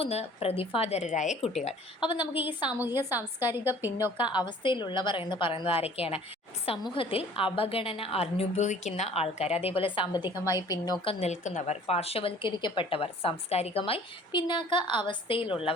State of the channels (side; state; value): both; normal; correlation 0.51